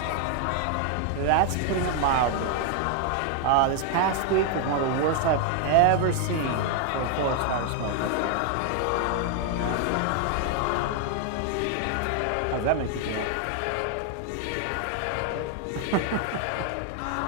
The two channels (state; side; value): different; both; correlation 0.00